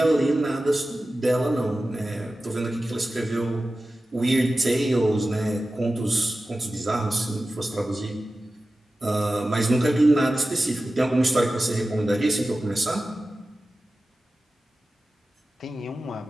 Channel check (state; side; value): normal; both; correlation 0.95